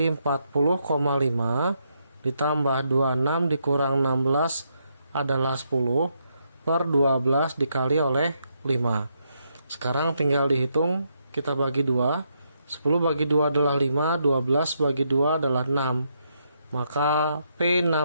40,5 ditambah 26 dikurang 16 adalah 10 per 12 dikali oleh 5. Sekarang tinggal dihitung, kita bagi 2. 10 bagi 2 adalah 5, 12 bagi 2 adalah 6. Maka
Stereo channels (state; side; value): inverted; both; correlation -0.78